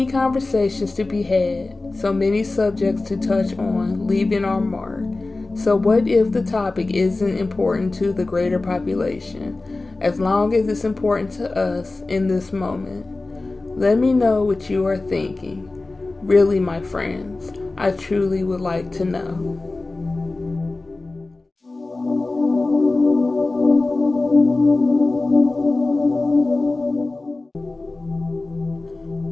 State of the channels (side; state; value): right; quieter; 3.3 dB